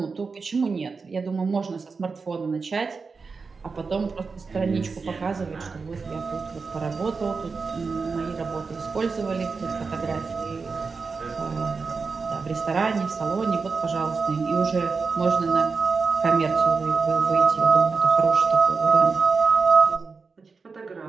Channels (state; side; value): quieter; left; 4.7 dB